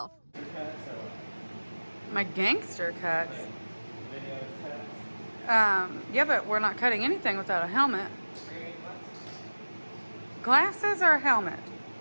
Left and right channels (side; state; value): both; inverted; correlation -1.00